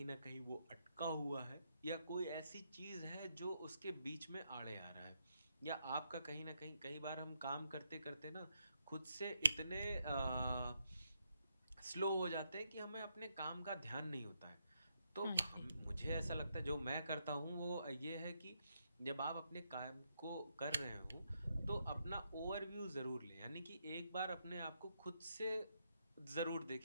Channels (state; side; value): inverted; both; correlation -0.79